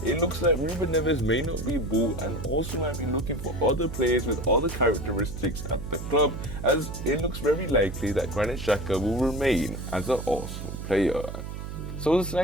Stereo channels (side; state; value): right; noise; hum, 8 dB below the sound